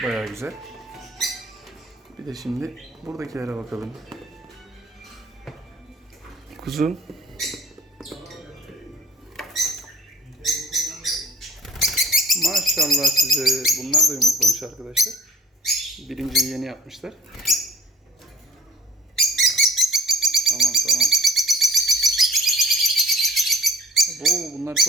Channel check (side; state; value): both; normal; correlation 0.49